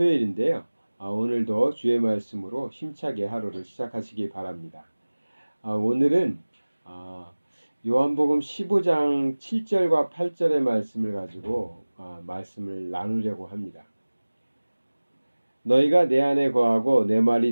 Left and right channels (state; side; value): inverted; both; correlation -1.00